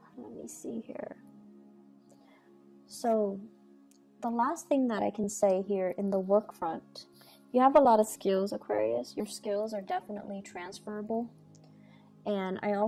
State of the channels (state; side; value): identical; both; correlation 1.00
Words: me see here. So the last thing that I can say here in the work front, you have a lot of skills, Aquarius. Your skills are definitely transferable. And I